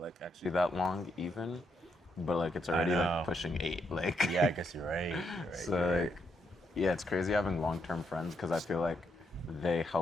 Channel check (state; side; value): normal; both; correlation 0.78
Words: actually that long even, but like it's already know. like pushing 8. Like Yeah, I guess you're right. You're right. so like yeah, it's crazy having long-term friends because I feel like they